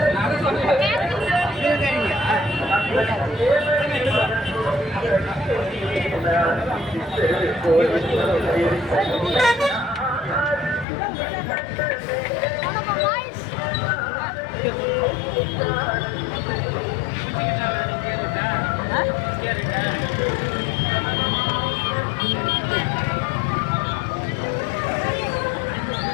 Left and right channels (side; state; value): right; drops out; at 10.9 s